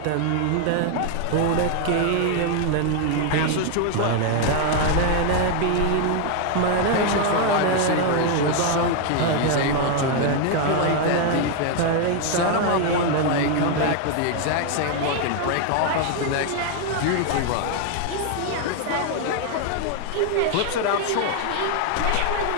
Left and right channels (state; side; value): different; both; correlation 0.01